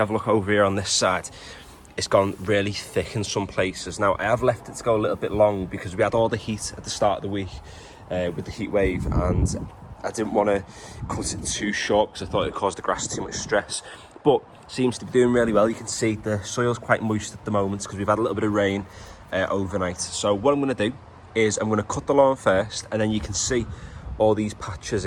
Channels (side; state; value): both; identical; correlation 1.00